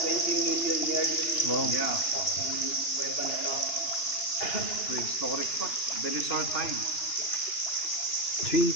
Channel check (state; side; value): late; right; 2.9 ms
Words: million years. Wow. Yeah. Yung kuweba na to. Prehistoric pa. Dinosaur time.